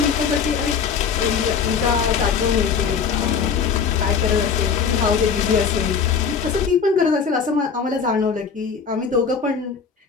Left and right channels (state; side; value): quieter; right; 6.2 dB